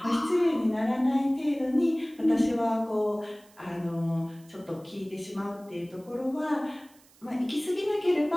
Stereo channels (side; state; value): right; noise; hiss, 28 dB below the sound